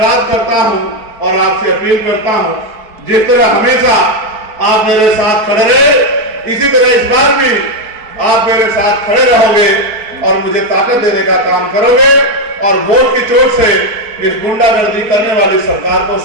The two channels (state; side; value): late; left; 4.6 ms